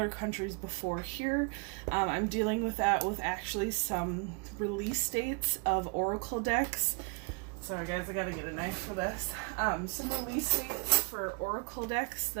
countries before here. I'm dealing with that with actually some release dates of Oracle decks. Sorry guys, I gotta get a knife for this. Some release dates for Oracle decks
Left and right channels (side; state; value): left; quieter; 34.2 dB